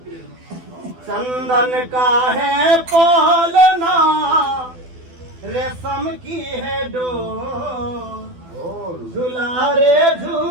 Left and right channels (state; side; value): late; left; 12 ms